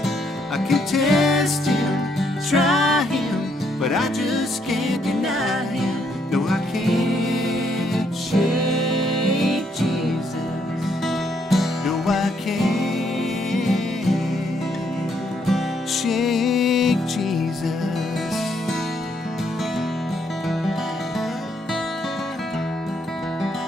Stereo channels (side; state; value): both; normal; correlation 0.73